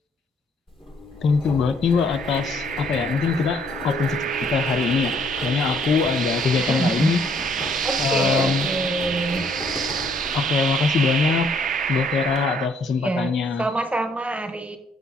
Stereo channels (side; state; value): both; normal; correlation 0.65